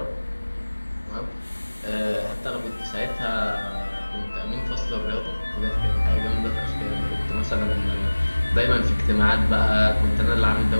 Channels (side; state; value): both; inverted; correlation -1.00